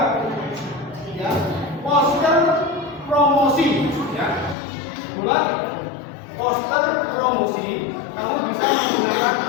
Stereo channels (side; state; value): right; drops out; at 4.5 s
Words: ya poster promosi, ya. Buat poster promosi. Kamu bisa menggunakan